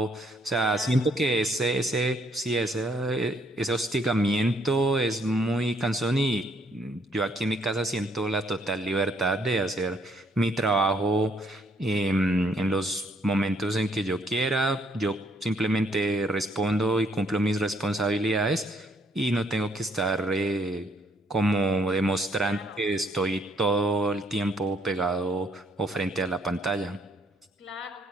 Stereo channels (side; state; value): both; normal; correlation 0.68